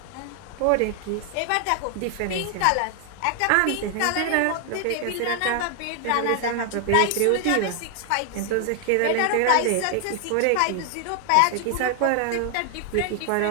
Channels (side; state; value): both; different; correlation 0.00